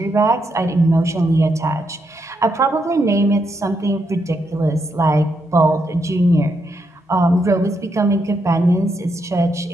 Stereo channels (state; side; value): normal; both; correlation 0.80